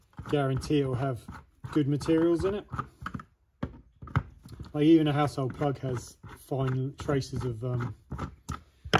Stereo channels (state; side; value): identical; both; correlation 1.00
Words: guarantee it will have good materials in it. Like even a household plug has fine traces of